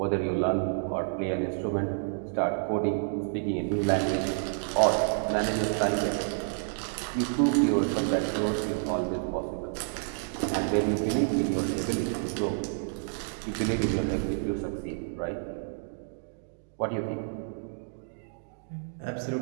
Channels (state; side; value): silent; left; digital silence